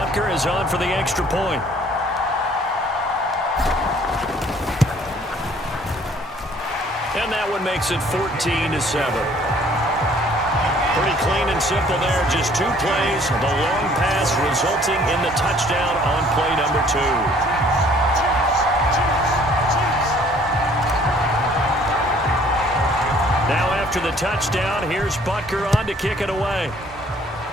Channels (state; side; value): normal; both; correlation 0.58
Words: is on for the extra point. And that one makes it 14-7. Pretty clean and simple there. Just 2 plays. The long pass resulting in the touchdown on play number 2. Now after the touchdown, here's Butker on to kick it away.